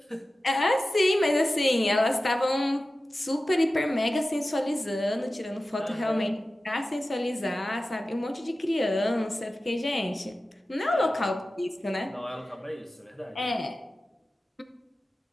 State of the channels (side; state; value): both; normal; correlation 0.95